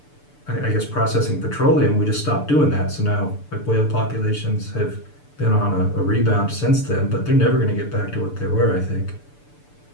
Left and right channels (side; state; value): right; late; 6.8 ms